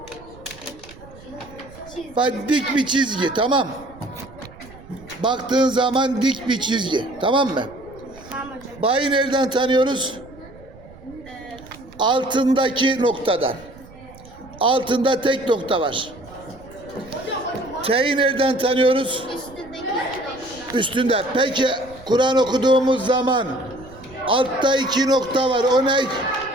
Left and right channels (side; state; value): right; noise; rumble, 21 dB below the sound